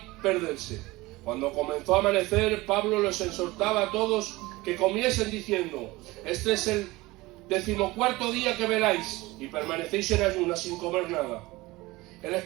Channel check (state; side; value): quieter; left; 20.6 dB